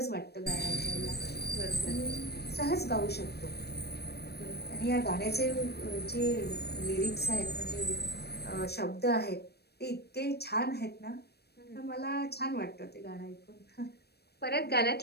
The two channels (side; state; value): right; late; 0.47 ms